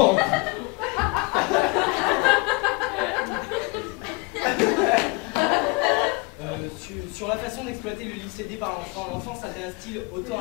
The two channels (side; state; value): right; quieter; 27.5 dB